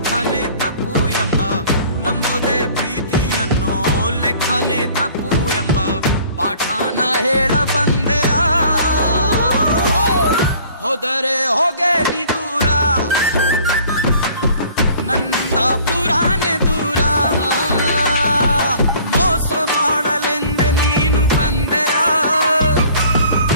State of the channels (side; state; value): both; inverted; correlation -0.52